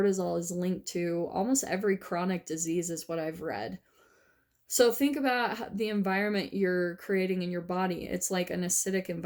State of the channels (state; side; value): identical; both; correlation 1.00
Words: is linked to almost every chronic disease, is what I've read. So think about the environment you're creating in your body. It's like an acidic